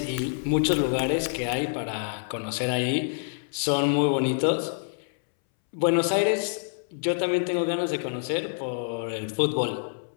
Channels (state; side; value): silent; right; 60 dB below the other